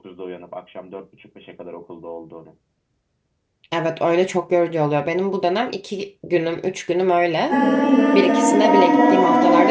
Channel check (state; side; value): identical; both; correlation 1.00